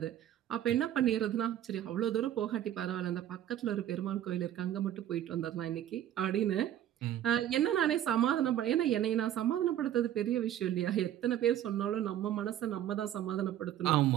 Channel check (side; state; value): left; quieter; 11.6 dB